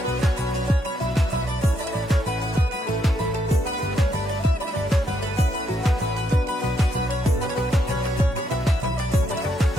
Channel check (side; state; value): both; normal; correlation 0.76